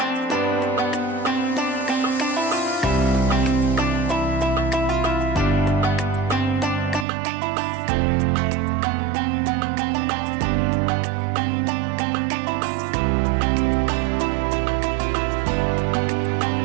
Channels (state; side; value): drops out; left; at 7.1 s